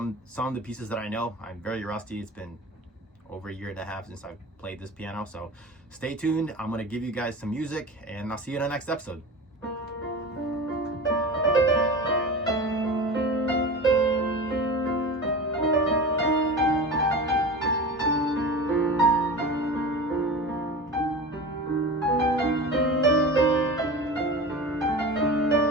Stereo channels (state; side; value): normal; both; correlation 0.31